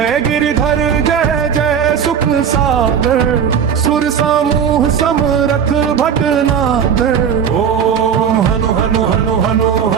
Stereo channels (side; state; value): left; quieter; 7.7 dB